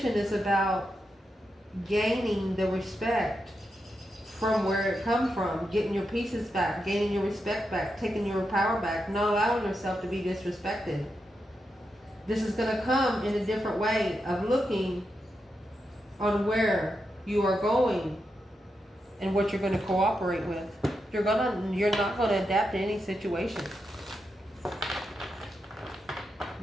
is about gaining the respect from where it come from, getting your pieces back, gaining your respect back, taking your power back, not allowing yourself to be disrespected. This is going to come in a different way of looking on where you are going and what you're going to cooperate with. You're not going to adapt to any situation.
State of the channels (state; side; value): normal; both; correlation 0.86